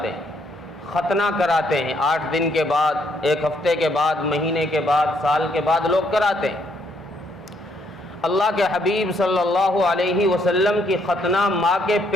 ہیں، ختنہ کراتے ہیں، 8 دن کے بعد، 1 ہفتے کے بعد، مہینے کے بعد، سال کے بعد لوگ کراتے ہیں۔ اللہ کے حبیب صلی اللہ علیہ وسلم کی ختنہ ماں کے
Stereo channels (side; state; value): both; normal; correlation 0.71